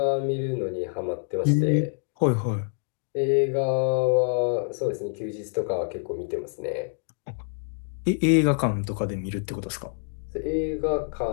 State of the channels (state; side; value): silent; right; digital silence